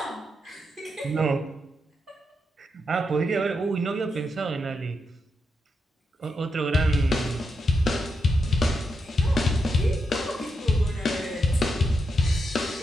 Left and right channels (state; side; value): normal; both; correlation 0.84